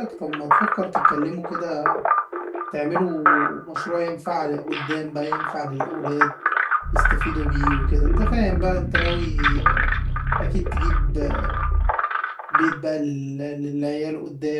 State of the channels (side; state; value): both; identical; correlation 1.00